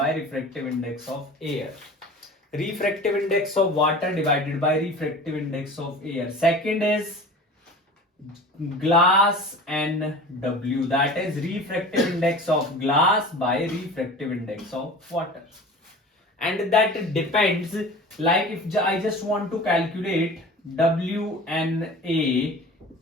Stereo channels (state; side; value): normal; both; correlation 0.39